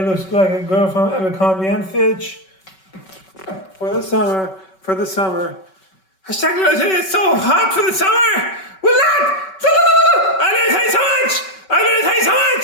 looks like a girl from Abercrombie and Fitch. For the summer. Hashtag Little Teddy, it's so hot for the summer. Will not. I Little Teddy so much.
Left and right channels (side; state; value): right; late; 5.3 ms